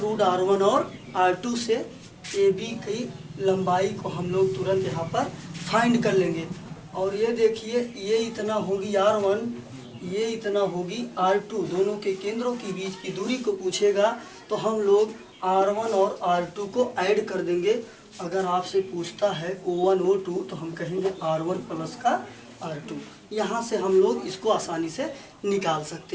R1 और R2 से AB की लंबाई को हम लोग तुरंत यहाँ पर फाइंड कर लेंगे। और ये देखिए ये इतना होगी R1, ये इतना होगी R2, दोनों के केंद्रों के बीच की दूरी को पूछेगा तो हम लोग R1 और R2 को ऐड कर देंगे। अगर आपसे पूछता है O1 O2 तो हम कहेंगे R1 प्लस का R2। यहाँ से हम लोग इसको आसानी से निकाल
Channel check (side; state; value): both; identical; correlation 1.00